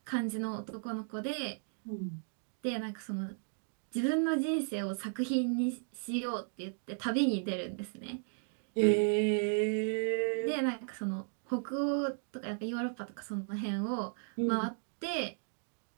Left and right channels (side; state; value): left; silent; digital silence